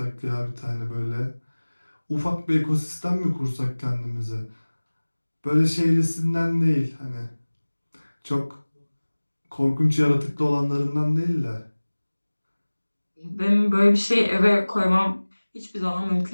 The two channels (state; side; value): inverted; both; correlation -1.00